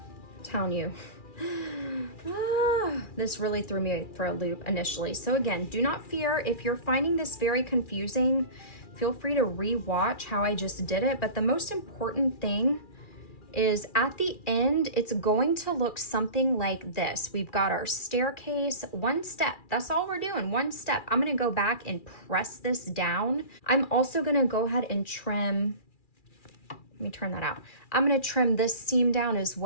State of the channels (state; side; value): late; right; 2.4 ms